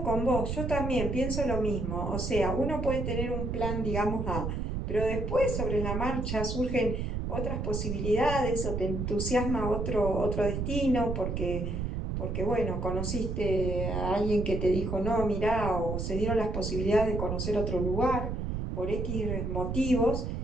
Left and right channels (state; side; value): noise; right; rumble, 2 dB below the sound